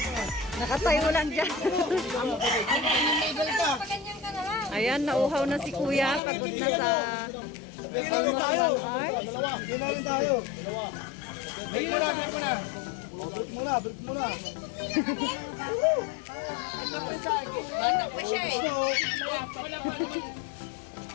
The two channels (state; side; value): drops out; right; at 6.2 s